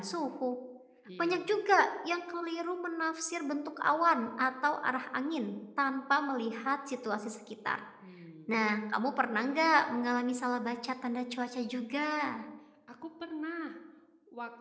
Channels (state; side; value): identical; both; correlation 1.00